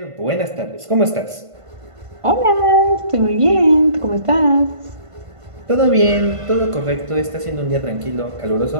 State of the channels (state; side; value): late; left; 1.5 ms